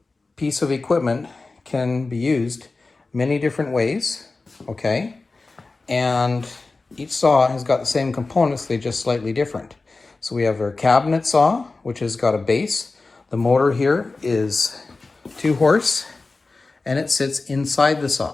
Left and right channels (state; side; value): quieter; right; 3.6 dB